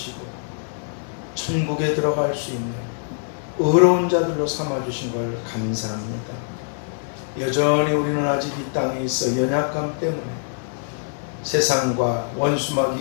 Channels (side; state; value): right; silent; digital silence